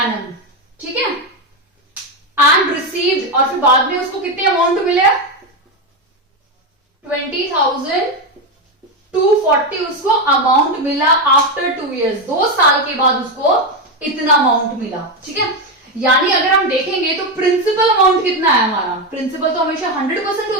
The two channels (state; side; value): normal; both; correlation 0.10